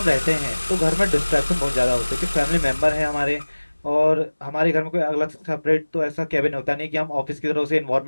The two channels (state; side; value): inverted; both; correlation -1.00